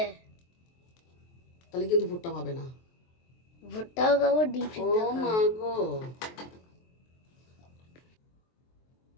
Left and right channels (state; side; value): late; right; 23 ms